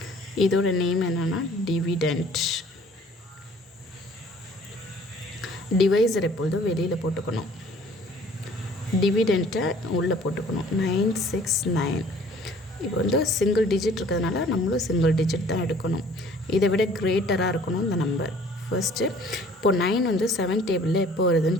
இதோட நேம் என்னன்னா டிவிடெண்ட். டிவைசர் எப்பொழுதும் வெளியில் போட்டுக்கணும், டிவிடெண்ட்டை உள்ளே போட்டுக்கணும். 969 இப்போ வந்து சிங்கிள் டிஜிட் இருக்கிறதுனால நம்மளும் சிங்கிள் டிஜிட் தான் எடுக்கணும். இதை விட கிரேட்டராக இருக்கணும் இந்த நம்பர். ஃபர்ஸ்ட்டு இப்போது 9 வந்து 7 டேபிளில் எப்போ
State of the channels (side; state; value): both; normal; correlation 0.54